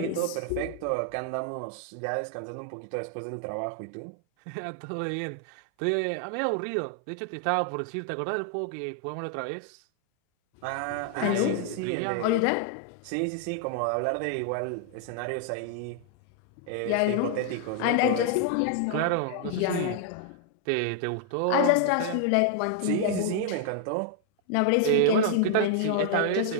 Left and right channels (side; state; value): both; different; correlation 0.00